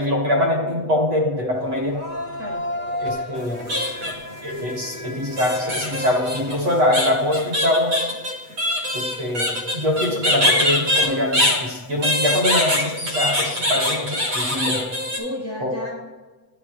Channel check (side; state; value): left; late; 8.1 ms